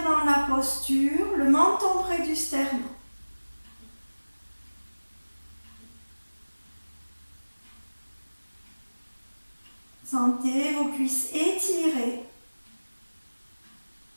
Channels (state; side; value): inverted; both; correlation -1.00